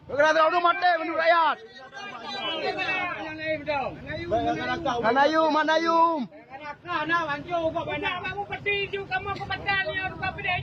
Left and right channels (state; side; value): identical; both; correlation 1.00